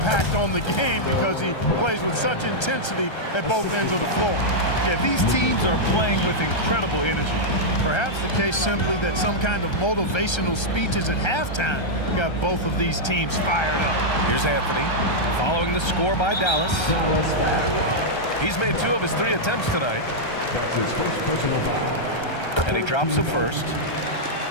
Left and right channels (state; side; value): late; right; 1.3 ms